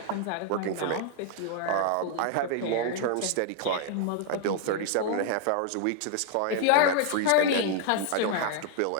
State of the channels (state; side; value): different; both; correlation 0.00